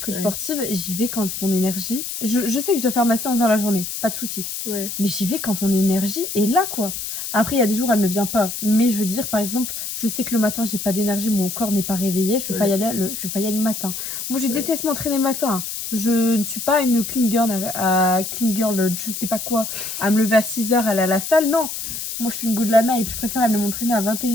coach Ouais. sportive, j'y vais quand mon énergie... Je sais que je dois faire ma séance dans la journée, pas de souci. Ouais. Mais j'y vais quand mon énergie est là, quoi. Après, il y a des jours, elle ne vient pas. Mais je veux dire, par exemple, je sais que le matin, j'ai pas d'énergie, mon corps n'est pas réveillé, je vais pas y aller je vais pas y aller le matin. Moi, je déteste m'entraîner le matin. Je ne suis pas une clean girl, je sais pas quoi, à me lever à 6h, aller à la salle. Non. Moi, je suis une go de la night. Je préfère aller m'entraîner à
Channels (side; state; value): left; noise; hiss, 6 dB below the sound